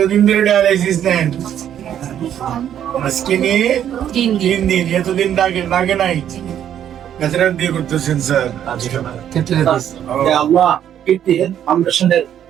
ধরে ডায়ালাইসিস নেন? আজকে নিয়ে 3 দিন। এতদিন লাগে নাই? কাছাড়া দিয়ে করতেছেন স্যার? আল্লাহ ফাউন্ডেশনের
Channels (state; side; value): quieter; left; 10.1 dB